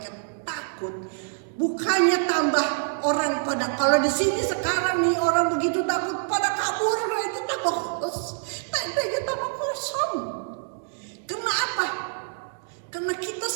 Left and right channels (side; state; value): left; silent; digital silence